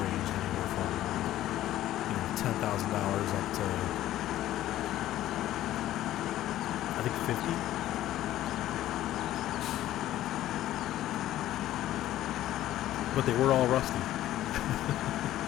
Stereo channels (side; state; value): right; quieter; 13.8 dB